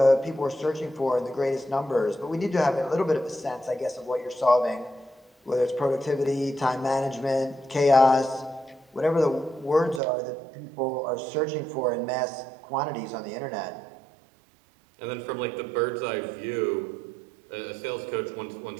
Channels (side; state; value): left; drops out; at 10.0 s